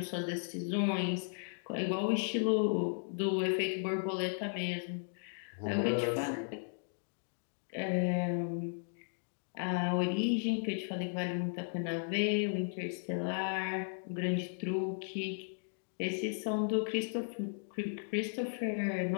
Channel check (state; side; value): silent; right; digital silence